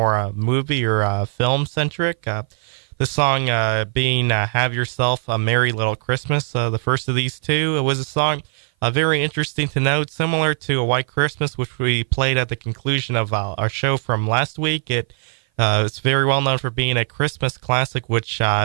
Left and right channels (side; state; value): left; silent; 57 dB below the other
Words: movie or film centric. This song being Have Yourself a Merry Little Christmas, the first of these two. It was a song very interesting to note, similar to A White Christmas, which we played at the conclusion of our show from last week. It's very well known for being a Christmas classic, which,